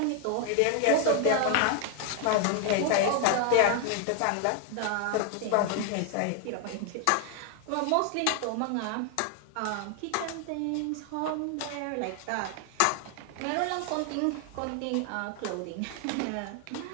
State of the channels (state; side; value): different; both; correlation 0.00